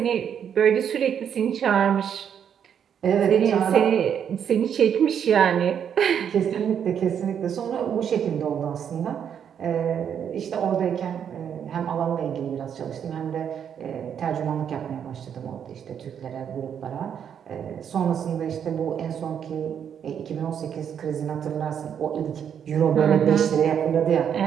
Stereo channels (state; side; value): quieter; left; 8.3 dB